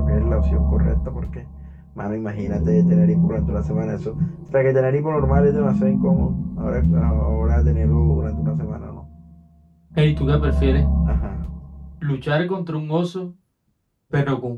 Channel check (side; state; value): both; identical; correlation 1.00